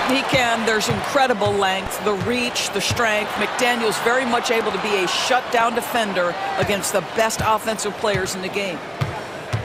He can. There's incredible length, the reach, the strength. McDaniels very much able to be a shutdown defender against the best offensive players in the game.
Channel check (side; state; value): both; identical; correlation 1.00